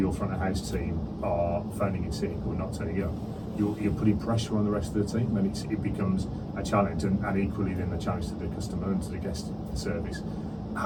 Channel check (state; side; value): identical; both; correlation 1.00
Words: front of house team are phoning in sick or not turning up. You're putting pressure on the rest of the team, and it becomes a challenge, and equally then a challenge to the customer and to the guest service.